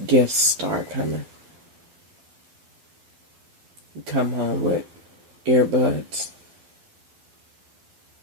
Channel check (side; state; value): left; late; 12 ms